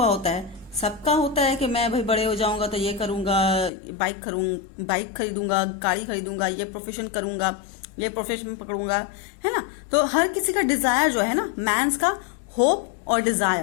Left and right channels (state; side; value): drops out; right; at 3.7 s